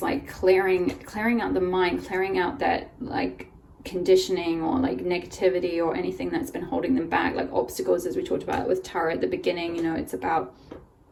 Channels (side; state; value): both; identical; correlation 1.00